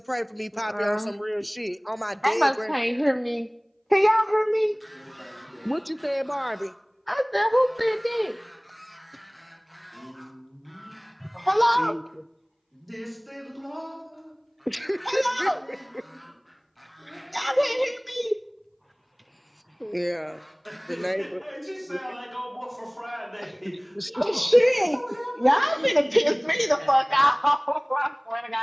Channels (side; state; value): both; identical; correlation 1.00